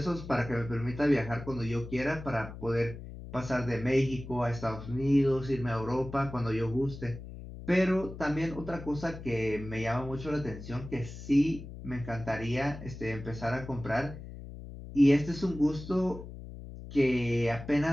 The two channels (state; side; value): noise; left; hum, 12 dB below the sound